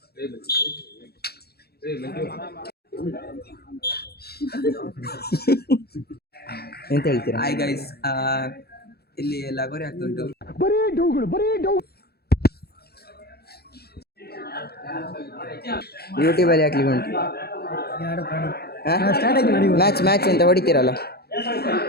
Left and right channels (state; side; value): late; right; 0.46 ms